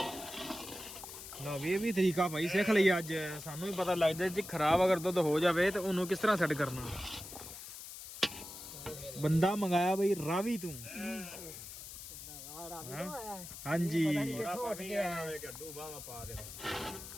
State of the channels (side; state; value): left; noise; hiss, 12 dB below the sound